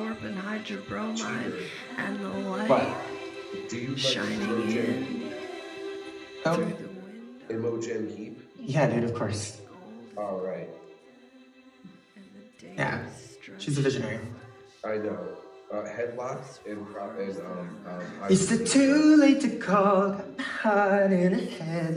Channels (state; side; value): identical; both; correlation 1.00